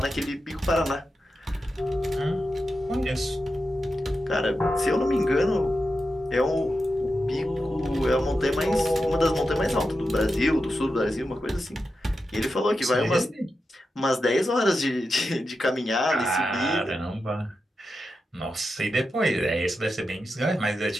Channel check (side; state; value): both; normal; correlation 0.89